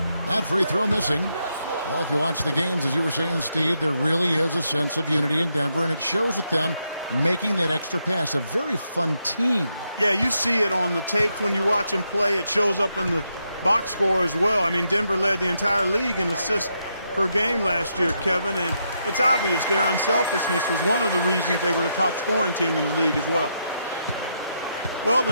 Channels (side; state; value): both; inverted; correlation -0.81